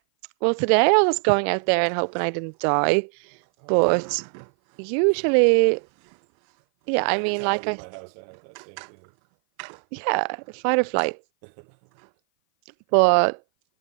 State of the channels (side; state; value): left; silent; 58 dB below the other